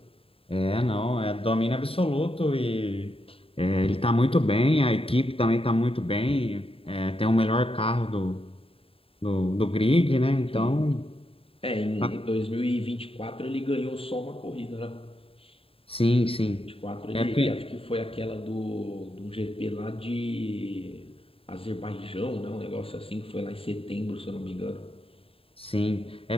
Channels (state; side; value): late; right; 0.27 ms